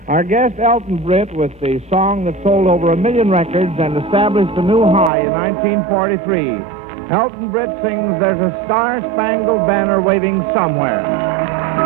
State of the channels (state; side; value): drops out; left; at 5.1 s